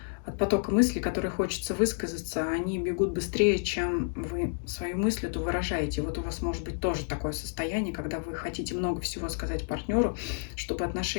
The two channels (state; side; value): silent; right; 58 dB below the other